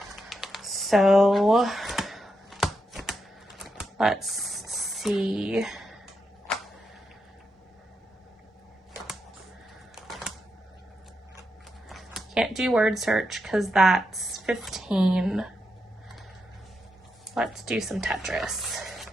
So let's see. Can't do word search because that's 15. Let's do some Tetris.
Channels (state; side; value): normal; both; correlation 0.84